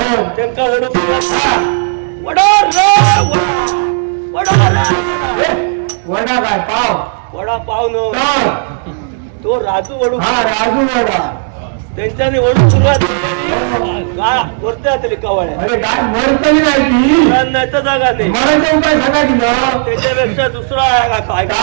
त्यांना वडा काय पाव वडा पाव न तो राजू वडू राजू वडा त्यांच्याने वडू सुरुवात गाय वरते जातली कवाळ्या. अरे काय मरतली नाही नाही तर जागा नाही. मराठा उपाय सांगा की त्याच्यापेक्षा दुसरा आहे का काय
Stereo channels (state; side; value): silent; left; digital silence